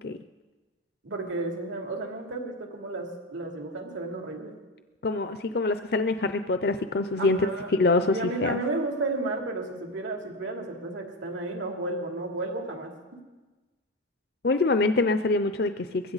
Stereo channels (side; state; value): both; normal; correlation 0.17